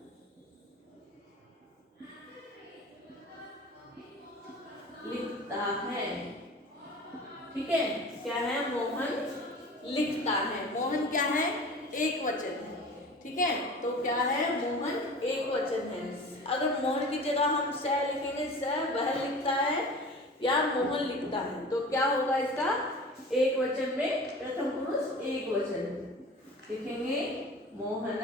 लिखता है, ठीक है, क्या है, मोहन लिखता है। मोहन क्या है, एक वचन है, ठीक है, तो क्या है, मोहन एक वचन है। अगर मोहन की जगह हम स लिखेंगे, स वह लिखता है या मोहन लिखता है, तो क्या होगा इसका, एक वचन में प्रथम पुरुष एक वचन लिखेंगे, मोहन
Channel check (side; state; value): both; normal; correlation 0.39